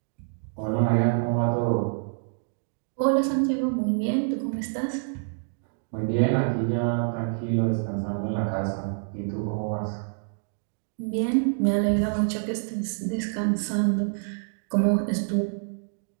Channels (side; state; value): left; silent; digital silence